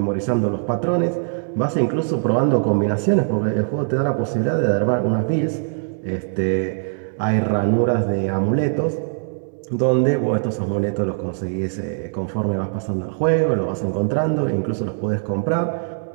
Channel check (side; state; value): left; silent; digital silence